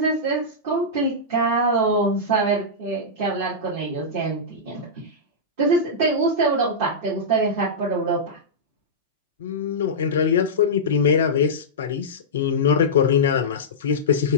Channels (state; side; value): normal; both; correlation -0.13